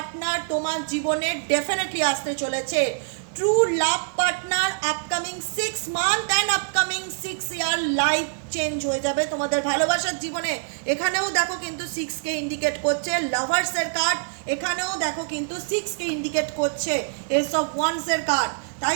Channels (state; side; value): silent; left; digital silence